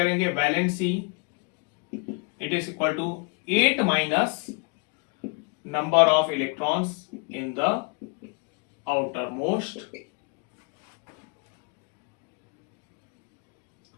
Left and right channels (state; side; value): quieter; right; 34.3 dB